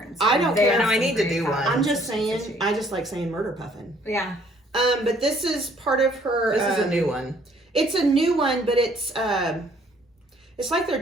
I don't They care. have No, I some need to great do one. patterns. I'm just saying, I just like saying Murder Puffin. Yeah. But this is part of her. This is a new one. It's a new one, but it's like their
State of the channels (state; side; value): normal; both; correlation 0.61